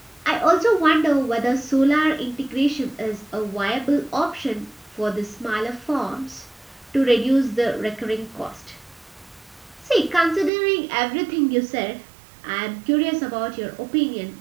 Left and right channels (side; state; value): left; drops out; at 10.5 s